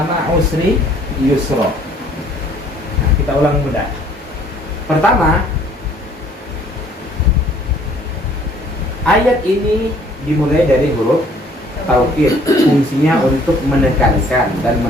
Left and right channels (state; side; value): normal; both; correlation 0.58